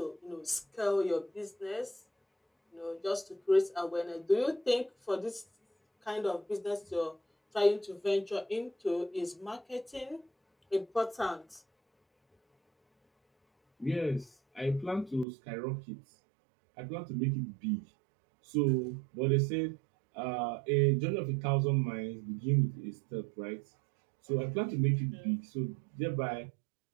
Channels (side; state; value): left; drops out; at 15.2 s